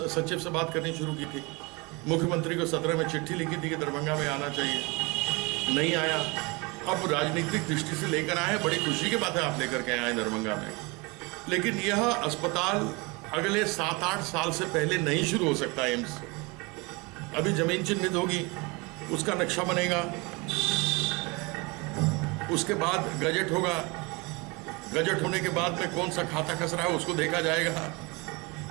सचिव से बात करनी शुरू की थी। मुख्यमंत्री को 17 में चिट्ठी लिखी थी कि दरभंगा में आना चाहिए, नहीं आया। अब राजनीतिक दृष्टि से लेकर आए, बड़ी खुशी की बात है आप लेकर के आए दरभंगा में, लेकिन यह अस्पताल अगले 7-8 साल से पहले नहीं शुरू हो सकता। एम्स अभी जमीन चिन्हित होगी, उसका नक्शा बनेगा, उसके बाद गजट होगा, गजट होने के बाद में कौन सा खाता खसरा है उसको देखा जाएगा।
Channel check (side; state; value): left; quieter; 27.2 dB